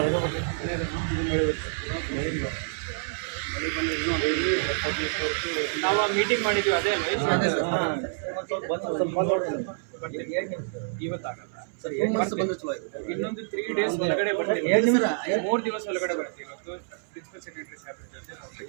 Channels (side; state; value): left; silent; 60 dB below the other